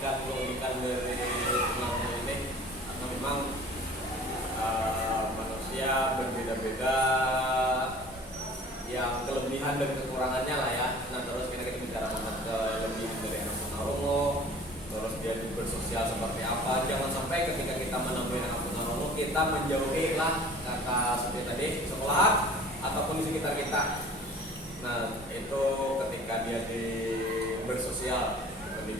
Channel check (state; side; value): normal; both; correlation 0.46